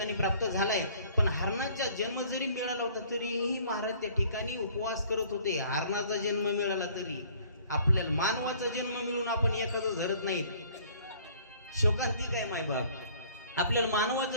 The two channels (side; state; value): both; inverted; correlation -0.55